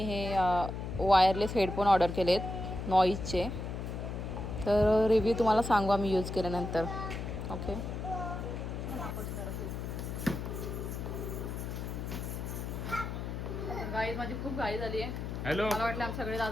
हे वायरलेस हेडफोन ऑर्डर केलेत नॉईजचे. तर रिव्ह्यू तुम्हाला सांगू आम्ही यूज केल्यानंतर. ओके गाईज माझी खूप घाई झाली आहे. हॅलो मला वाटलं आमचे सगळे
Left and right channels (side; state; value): left; noise; hum, 5 dB below the sound